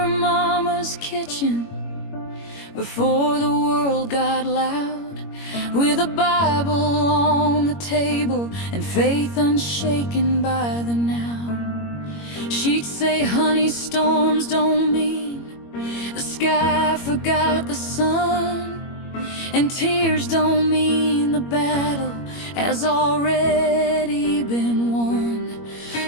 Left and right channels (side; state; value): right; late; 21 ms